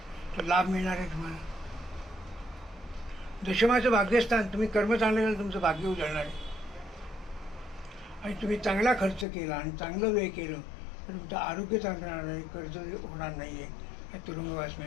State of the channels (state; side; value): drops out; right; at 9.2 s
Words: तर लाभ मिळणार आहे तुम्हाला. दशमाचं भाग्यस्थान, तुम्ही कर्म चांगलं केलं तुमचं भाग्य उजळणार आहे. आणि तुम्ही चांगला खर्च केला आणि चांगलं व्यय केलं तर तुमचं आरोग्य चांगलं राहणार आहे, कर्ज होणार नाही आहे, तुरुंगवास